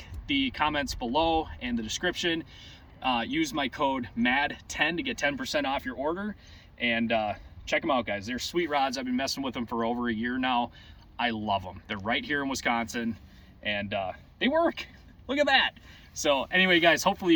the comments below and the description. Use my code MAD10 to get 10% off your order. And check them out, guys. They're sweet rods. I've been messing with them for over a year now. I love them. They're right here in Wisconsin, and they work. Look at that. So anyway, guys, hopefully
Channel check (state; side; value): identical; both; correlation 1.00